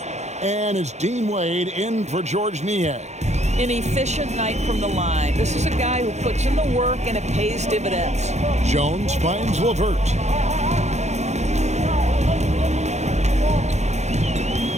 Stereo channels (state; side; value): late; left; 0.33 ms